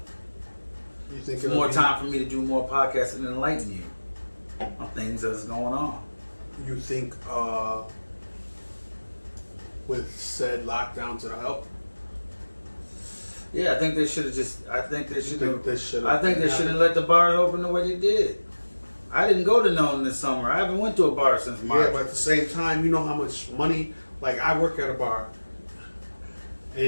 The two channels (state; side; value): inverted; both; correlation -1.00